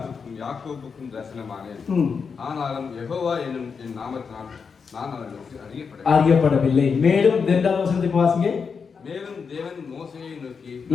யாக்கோபுக்கும் தரிசனமானேன். ஆனாலும் யெகோவா என்னும் என் நாமத்தினால் நான் அவர்களுக்கு அறியப்படவில்லை. மேலும் 2வது வசனத்துக்கு வாசிங்க. மேலும் தேவன் மோசேயை நோக்கி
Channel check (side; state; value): right; quieter; 5.7 dB